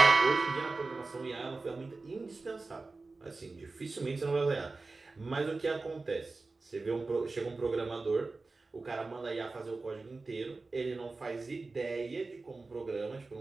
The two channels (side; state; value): left; quieter; 3.6 dB